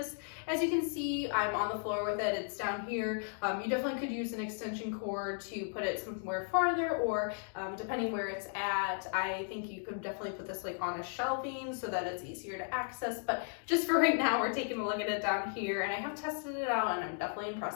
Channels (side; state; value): right; silent; 54 dB below the other